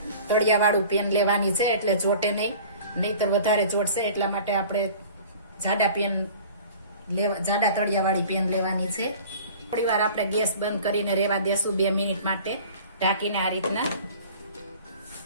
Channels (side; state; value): both; inverted; correlation -0.44